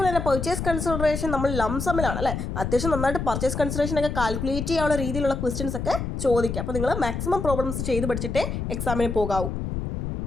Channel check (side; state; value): left; noise; rumble, 4 dB below the sound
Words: തന്നെ പർച്ചേസ് കൺസിഡറേഷൻ നമ്മൾ ലംസമിലാണ് അല്ലേ, അത്യാവശ്യം നന്നായിട്ട് പർച്ചേസ് കൺസിഡറേഷൻ ഒക്കെ കാൽക്കുലേറ്റ് ചെയ്യാനുള്ള രീതിയിലുള്ള ക്വസ്റ്റ്യൻസ് ഒക്കെ ചോദിക്കാം. അപ്പോൾ നിങ്ങൾ മാക്സിമം പ്രോബ്ലംസ് ചെയ്ത് പഠിച്ചിട്ടേ എക്സാമിന് പോകാവൂ.